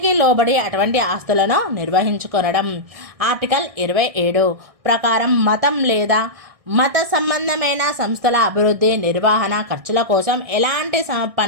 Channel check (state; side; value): late; left; 1.6 ms